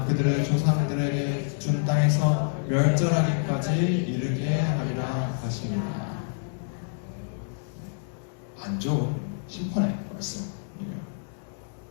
그들의 조상들에게 준 땅에서 멸절하기까지 이르게 하리라 하시니라. 안 좋은 심판의 말씀이에요.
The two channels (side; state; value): right; silent; digital silence